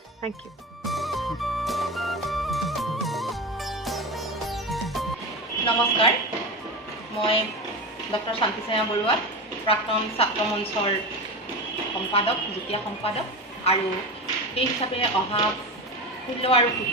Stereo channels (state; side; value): normal; both; correlation 0.23